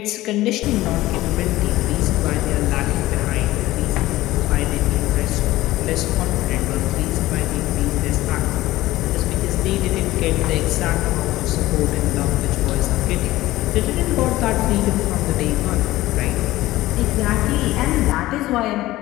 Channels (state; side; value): quieter; right; 16.8 dB